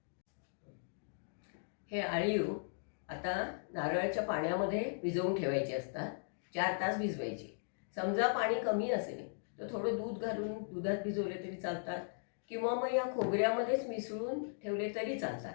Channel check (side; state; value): right; silent; digital silence